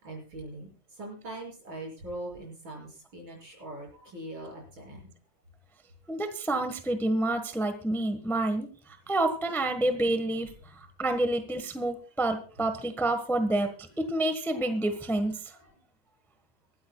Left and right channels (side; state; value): both; normal; correlation 0.77